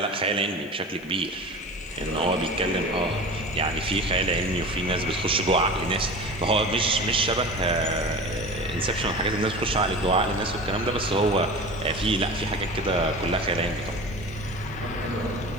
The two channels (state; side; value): noise; left; hiss, 29 dB below the sound